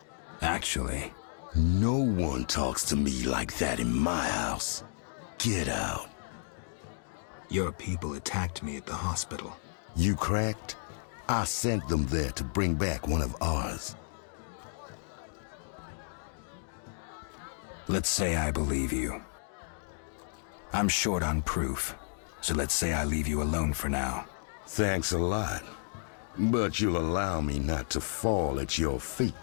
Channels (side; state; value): right; silent; digital silence